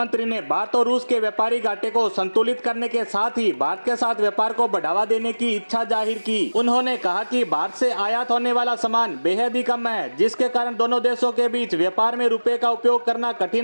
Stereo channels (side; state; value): both; inverted; correlation -1.00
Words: ने भारत और रूस के व्यापारी घाटे को संतुलित करने के साथ ही भारत के साथ व्यापार को बढ़ावा देने की इच्छा जाहिर की। उन्होंने कहा कि भारत से आयात होने वाला सामान बेहद ही कम है, जिसके कारण दोनों देशों के बीच व्यापार में रुपए का उपयोग करना